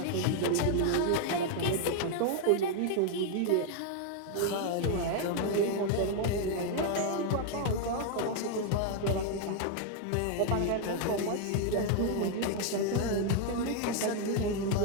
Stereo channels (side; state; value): both; different; correlation 0.00